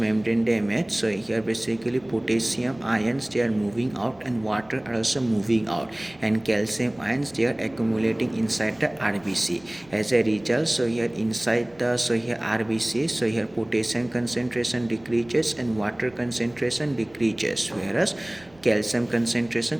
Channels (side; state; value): right; noise; rumble, 27 dB below the sound